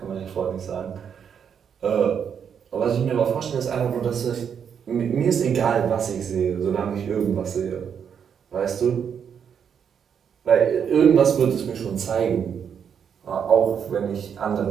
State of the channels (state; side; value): quieter; left; 7.6 dB